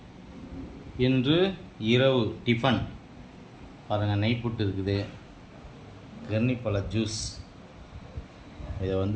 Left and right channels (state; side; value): identical; both; correlation 1.00